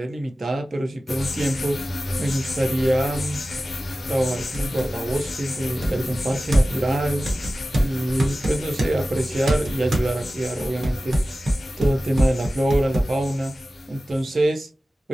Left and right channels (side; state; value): both; normal; correlation 0.95